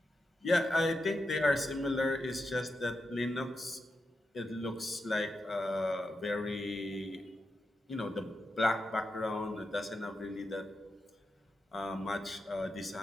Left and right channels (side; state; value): both; normal; correlation 0.87